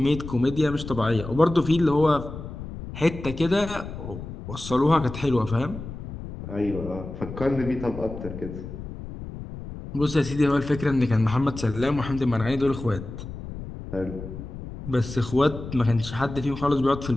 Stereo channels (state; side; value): noise; left; rumble, 10 dB below the sound